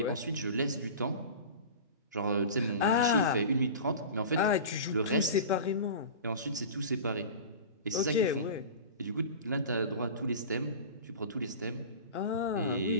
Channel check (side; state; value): both; inverted; correlation -0.34